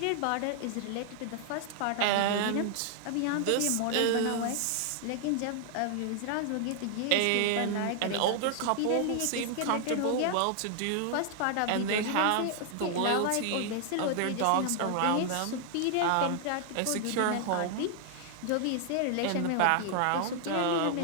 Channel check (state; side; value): different; both; correlation 0.00